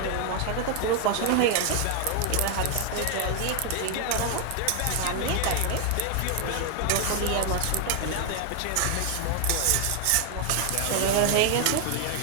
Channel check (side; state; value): both; different; correlation 0.00